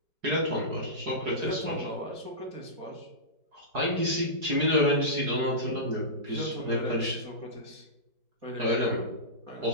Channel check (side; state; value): left; late; 4.7 ms